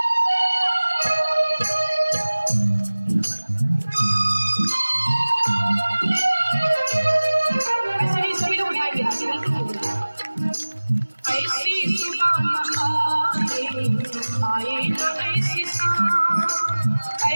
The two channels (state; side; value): inverted; both; correlation -1.00